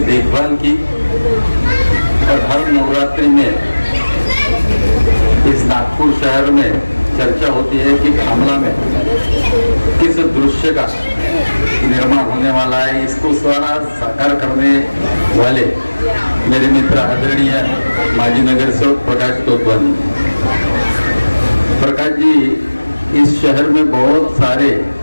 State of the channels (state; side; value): inverted; both; correlation -1.00